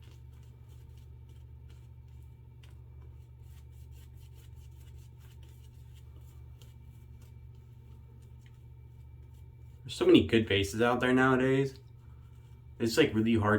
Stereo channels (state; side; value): identical; both; correlation 1.00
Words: There's so many good bases out there nowadays. It's like really